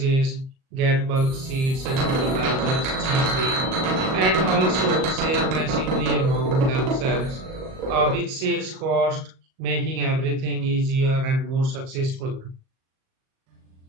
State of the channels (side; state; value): left; late; 38 ms